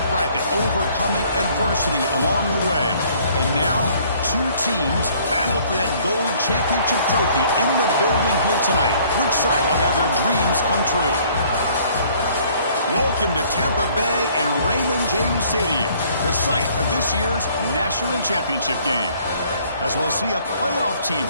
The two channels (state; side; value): inverted; both; correlation -0.59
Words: bracket, overcoming adversity along the way. And now, two teams battle for that gold championship trophy in the building here tonight. Which side will have their dreams come true? Welcome to Tampa Bay and Raymond James Stadium, the site of this year's national championship game. As we'll see a playoff team